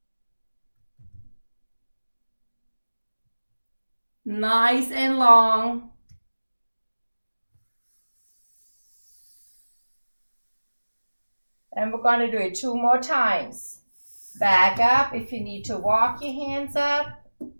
Nice and long. And we're going to do it 2 more times. Back up if you need to walk your hands up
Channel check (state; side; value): inverted; both; correlation -1.00